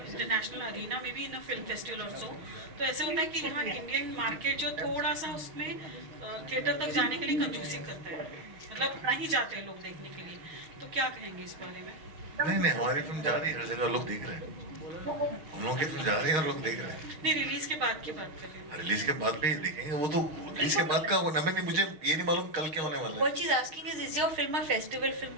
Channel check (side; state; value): left; late; 6.4 ms